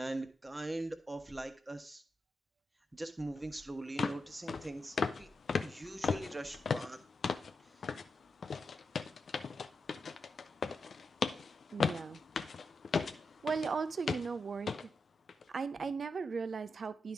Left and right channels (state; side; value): normal; both; correlation 0.86